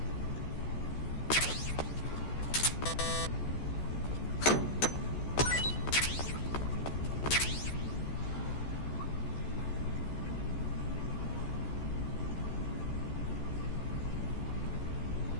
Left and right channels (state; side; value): late; right; 14 ms